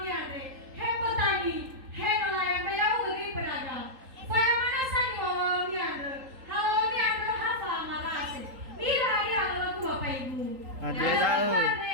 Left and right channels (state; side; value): late; left; 3.8 ms